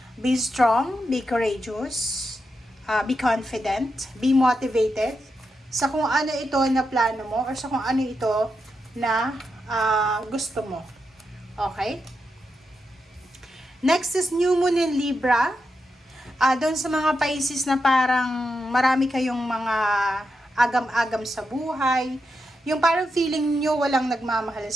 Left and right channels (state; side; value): normal; both; correlation 0.86